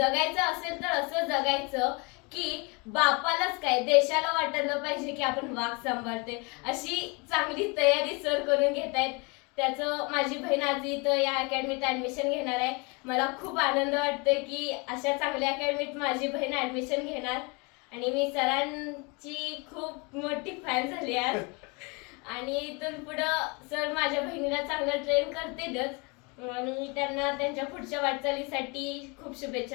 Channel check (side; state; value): right; quieter; 29.9 dB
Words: असेल तर असं जगायचं की बापालाच काय देशाला वाटायला पाहिजे की आपण वाघ सांभाळते। अशी चांगली तयारी सर करून घेतायत। त्याचं माझी बहीण आज इथं या अकॅडमीत ऍडमिशन घेणार आहे। मला खूप आनंद वाटतोय की अशा चांगल्या अकॅडमीत माझी बहीण ऍडमिशन घेणार आणि मी सरांची खूप मोठी फॅन झाली आज। आणि इथून पुढं सर माझ्या बहिणीला चांगलं ट्रेन करतीलच आणि त्यांना त्यांच्या पुढच्या वाटचालीसाठी खूप